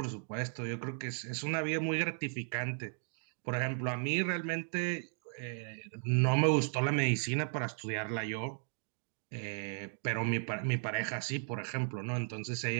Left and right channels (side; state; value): left; silent; 54 dB below the other